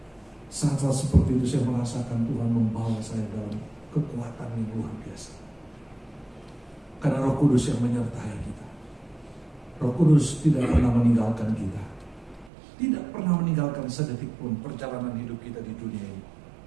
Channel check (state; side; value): drops out; left; at 12.5 s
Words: Saat-saat seperti itu saya merasakan Tuhan membawa saya dalam kekuatan yang luar biasa. Karena Roh Kudus yang menyertai kita. Roh Kudus tidak pernah meninggalkan kita. Tidak pernah meninggalkan sedetik pun perjalanan hidup kita di dunia ini.